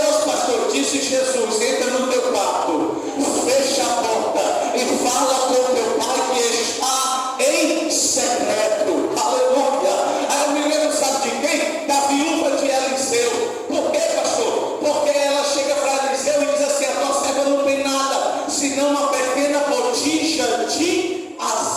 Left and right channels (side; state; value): both; identical; correlation 1.00